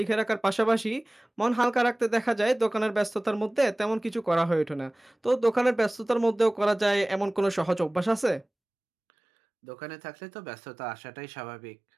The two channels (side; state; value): left; drops out; at 8.5 s